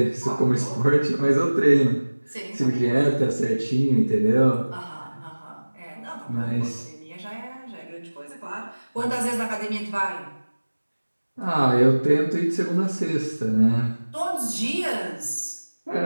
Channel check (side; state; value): both; inverted; correlation -1.00